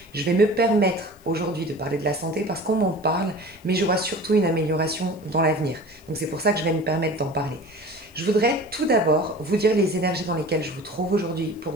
Je vais me permettre aujourd'hui de parler de la santé parce qu'on m'en parle, mais je vois surtout une amélioration dans l'avenir. Donc c'est pour ça que je vais me permettre d'en parler. Je voudrais tout d'abord vous dire les énergies dans lesquelles je vous trouve aujourd'hui pour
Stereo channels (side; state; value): left; noise; hiss, 29 dB below the sound